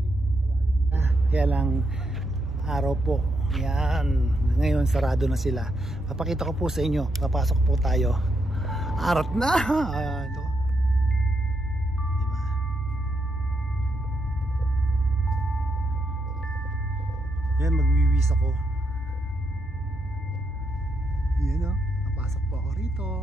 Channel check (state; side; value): normal; both; correlation 0.81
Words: kaya lang araw po. Yan, ngayon sarado na sila. Papakita ko po sa inyo. Papasok po tayo. Arat na. Ito. Diba? Yan, magwiwis ako. Yan o, napasok po ako rito.